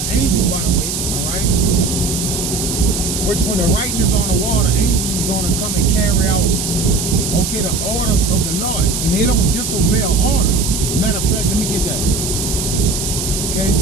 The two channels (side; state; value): right; noise; hiss, 3 dB below the sound